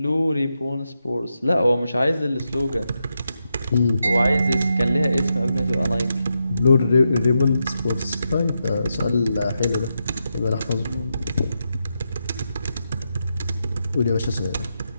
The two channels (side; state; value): both; inverted; correlation -0.85